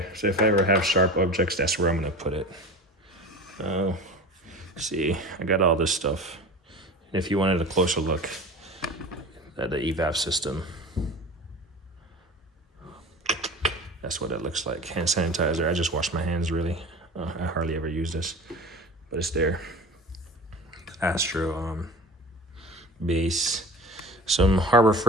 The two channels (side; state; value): both; normal; correlation 0.35